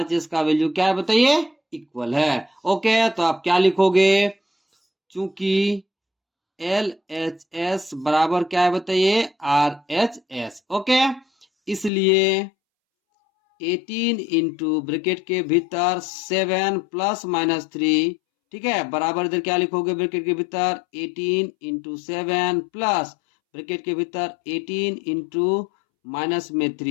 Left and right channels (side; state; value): right; drops out; at 11.9 s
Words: का वैल्यू क्या है बताइए इक्वल है। ओके, तो आप क्या लिखोगे, चूंकि एल एच एस बराबर क्या है बताइए आर एच एस। ओके, इसलिए 18 इंटू ब्रैकेट के भीतर 7 प्लस माइनस 3, ठीक है, बराबर इधर क्या लिखोगे ब्रैकेट के भीतर 18 इंटू 7 प्लस ब्रैकेट के भीतर 18 इंटू माइनस में